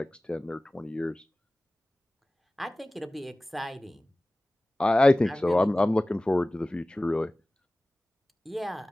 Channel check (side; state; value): both; normal; correlation 0.98